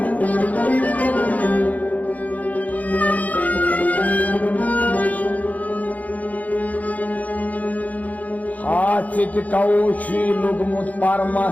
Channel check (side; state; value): right; late; 0.075 ms